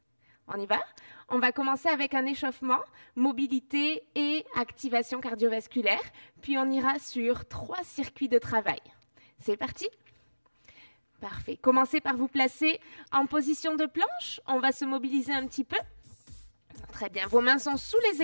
On y va? On va commencer avec un échauffement, mobilité et activation cardiovasculaire, puis on ira sur 3 circuits de travail. C'est parti? Parfait. Commencez par vous placer en position de planche. On va se mobiliser un petit peu. Très bien. Vos mains sont sous les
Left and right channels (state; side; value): inverted; both; correlation -1.00